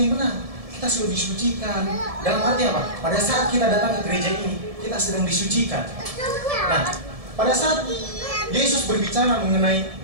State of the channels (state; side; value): late; left; 1.7 ms